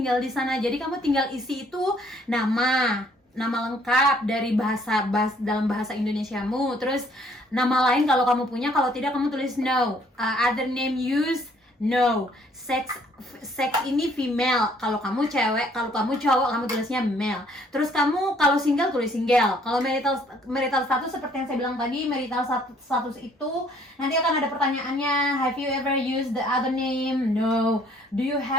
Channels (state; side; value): normal; both; correlation 0.63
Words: di sana. Jadi kamu tinggal isi itu nama lengkap dari dalam bahasa Indonesiamu, terus nama lain kalau kamu punya, kalau tidak kamu tulis no, other name used no, sex ini female, kalau kamu cewek, kalau kamu cowok kamu tulisnya male. Terus kamu kalau single tulis single. Kalau marital status seperti yang saya bilang tadi, marital status itu nanti akan ada pertanyaannya, have you ever used the other name? No. Do you